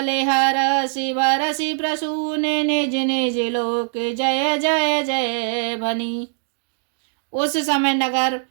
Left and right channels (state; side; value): silent; left; digital silence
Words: हरसि बरसि प्रसून निज निज लोक जय जय जय भनी। उस समय नगर